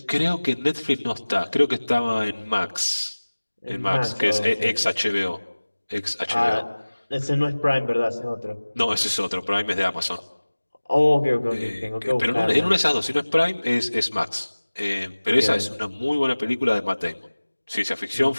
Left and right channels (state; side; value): inverted; both; correlation -1.00